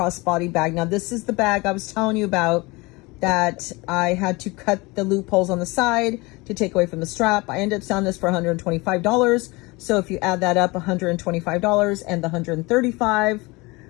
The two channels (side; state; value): right; quieter; 24.3 dB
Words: bag. Now this is the bag I was telling you about that I had to cut the loopholes on the side to take away from the strap. I ended up selling this for $125. So if you add that up, $125 and the $135,